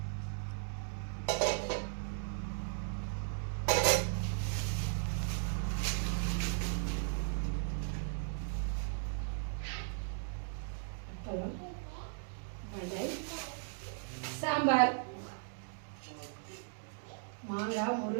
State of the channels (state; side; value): silent; left; digital silence